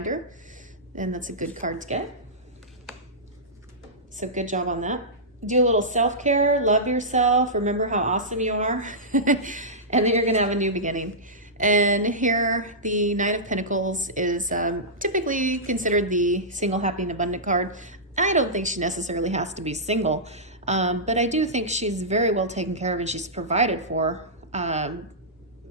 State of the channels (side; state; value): both; normal; correlation -0.15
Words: and that's a good card to get. So good job on that. Do a little self-care, love yourself, remember how awesome you are. And then you're going to have a new beginning. And here, the Knight of Pentacles is typically considered the single, happy, and abundant card. I don't think she necessarily has to be single, but I do think she's very well taken care of and she's provided for.